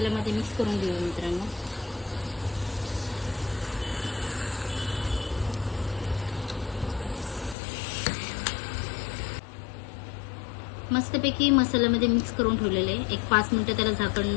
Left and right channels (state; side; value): drops out; right; at 7.6 s